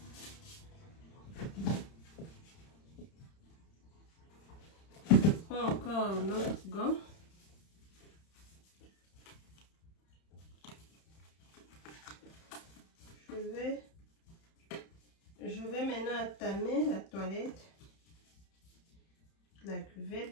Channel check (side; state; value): right; late; 31 ms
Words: Je prends encore l'autre gant. Je vais maintenant attamer la toilette, la